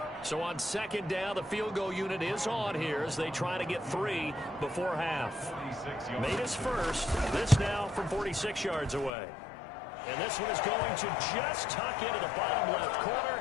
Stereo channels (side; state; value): right; drops out; at 9.1 s